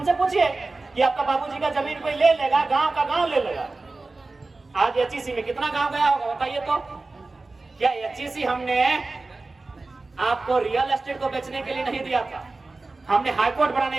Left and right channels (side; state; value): left; quieter; 3.4 dB